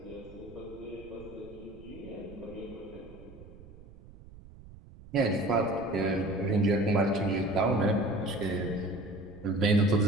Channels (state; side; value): noise; right; rumble, 19 dB below the sound